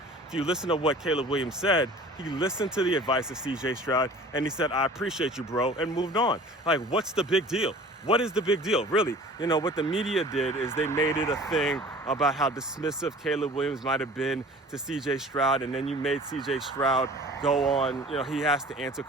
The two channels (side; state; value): both; normal; correlation 0.45